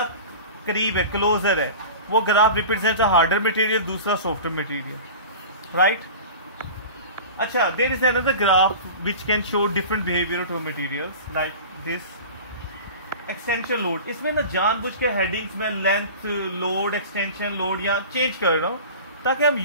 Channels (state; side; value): inverted; both; correlation -0.36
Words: करीब है, क्लोजर है, वो graph represent a harder material, दूसरा सॉफ्टवेयर मटेरियल. राइट. अच्छा, there is another graph which can show different behaviour of materials like this extension load. इसमें ना जानबूझ के हेडिंग्स में लेंथ लोड, एक्सटेंशन लोड या चेंज कर रहा हूं ताकि हम